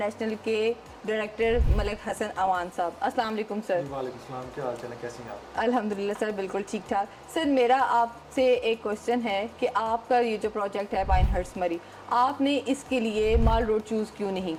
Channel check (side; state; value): both; identical; correlation 1.00